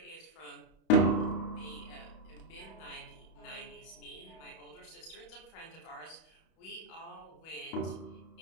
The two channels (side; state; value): right; late; 31 ms